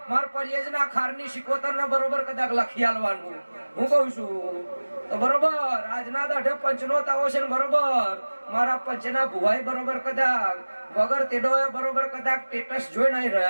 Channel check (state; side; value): inverted; both; correlation -1.00